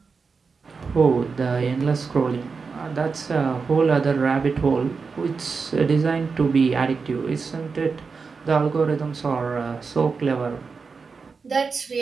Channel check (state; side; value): quieter; left; 4.9 dB